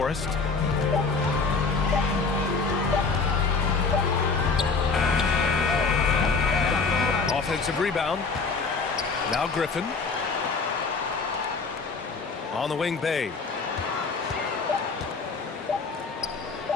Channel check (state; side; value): quieter; right; 4.5 dB